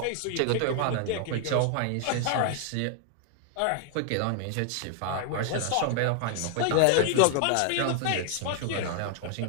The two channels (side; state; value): both; different; correlation 0.00